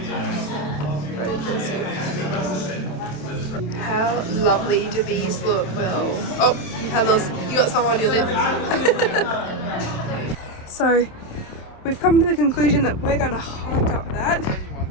Very crazy. How lovely do these look, Will? Oh, you got some on your lip. So, we've come to the conclusion that we're gonna hike up that.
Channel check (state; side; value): late; right; 27 ms